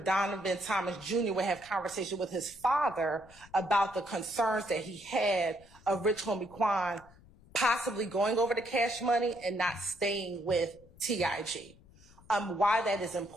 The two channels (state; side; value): noise; left; rumble, 25 dB below the sound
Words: Donovan Thomas Jr. would have conversation with his father about the concerns that he had of Rich Homie Quan possibly going over to Cash Money and not staying with TIG. Why that is